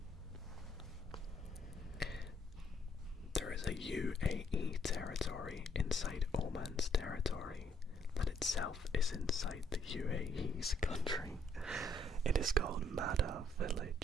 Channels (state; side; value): normal; both; correlation 0.68